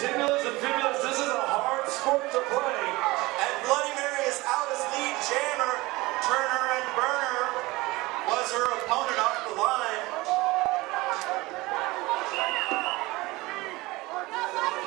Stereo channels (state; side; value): quieter; left; 21.2 dB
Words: and fibulas. This is a hard sport to play. And Bloody Mary is out as lead jammer. Turner and Burner was her opponent off the line.